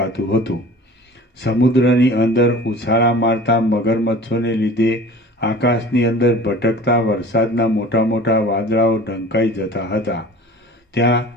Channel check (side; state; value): both; normal; correlation 0.41